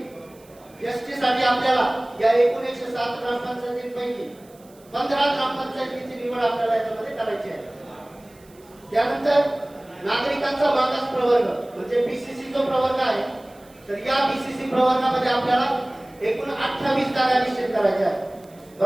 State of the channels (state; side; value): noise; right; hiss, 28 dB below the sound